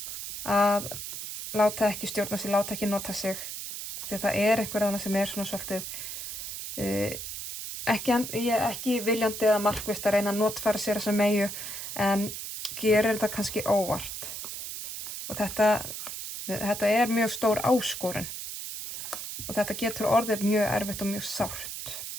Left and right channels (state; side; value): noise; right; hiss, 7 dB below the sound